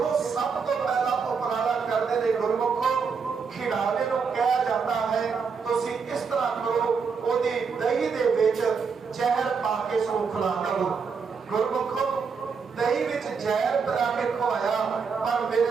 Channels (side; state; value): left; quieter; 5.6 dB